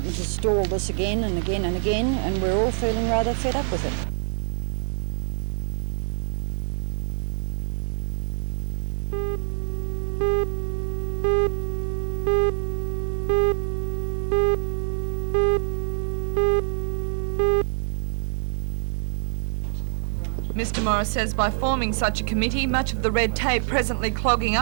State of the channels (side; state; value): left; silent; 62 dB below the other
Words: has stalled this again and again and again, and we're all feeling rather fed up with it. Mr. Morris says by forming such a committee, much of the red tape presently clogging